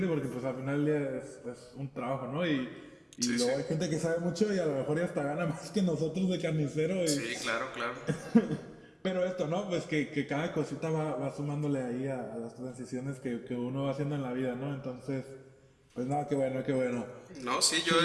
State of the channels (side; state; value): both; identical; correlation 1.00